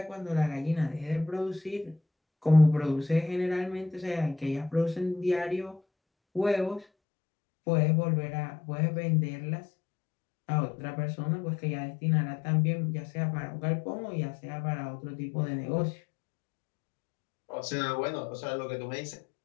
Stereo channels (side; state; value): right; drops out; at 6.9 s